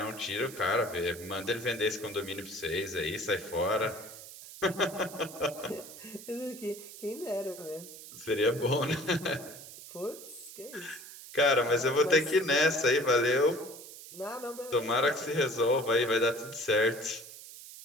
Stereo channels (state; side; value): noise; right; hiss, 15 dB below the sound